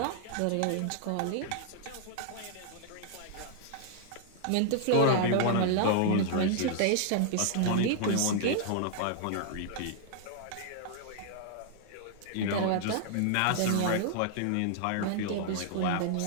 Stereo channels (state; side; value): different; both; correlation 0.00